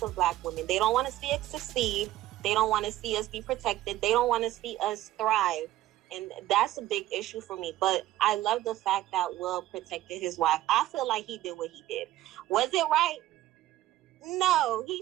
of black women. They don't want to see us succeed. They don't want to see us be protected. They don't want to see us thrive. And that's a big issue for me. But I love the fact that Will protected his wife. I feel like he did what he did. Was it right? No,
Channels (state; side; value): quieter; left; 14.8 dB